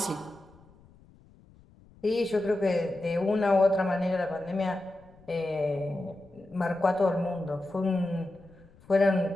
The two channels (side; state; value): left; noise; rumble, 26 dB below the sound